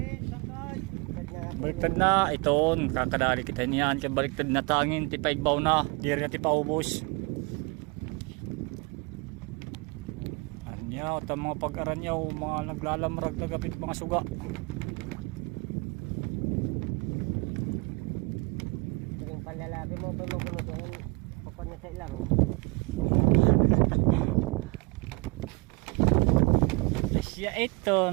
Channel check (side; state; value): left; quieter; 28.6 dB